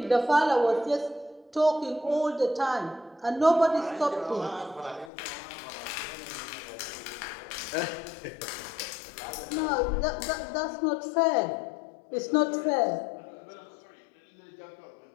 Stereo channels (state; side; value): drops out; right; at 5.1 s